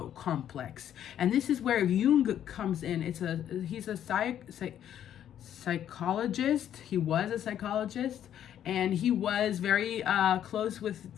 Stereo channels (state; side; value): quieter; right; 10.4 dB